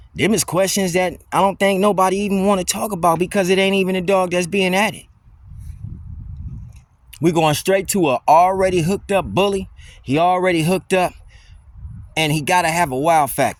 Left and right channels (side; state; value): both; identical; correlation 1.00